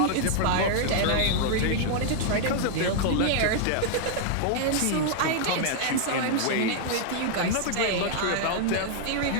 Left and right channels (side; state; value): both; different; correlation 0.00